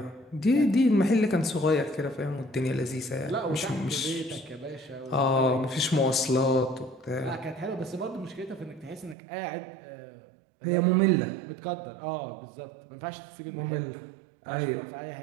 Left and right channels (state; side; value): drops out; left; at 9.2 s